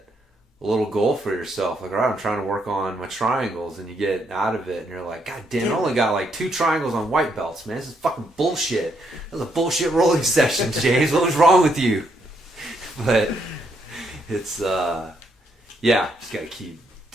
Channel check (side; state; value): both; normal; correlation 0.75